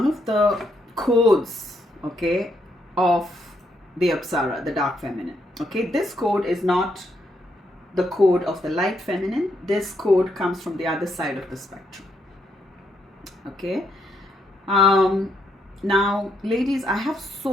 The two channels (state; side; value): normal; both; correlation 0.77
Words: of the codes, okay, of the Apsara, the dark feminine. Okay, this code is not the code of the light feminine. This code comes from the other side of the spectrum. Okay, now, ladies, I have